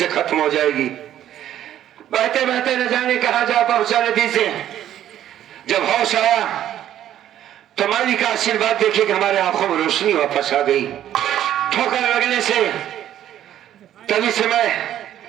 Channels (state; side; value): quieter; left; 11.5 dB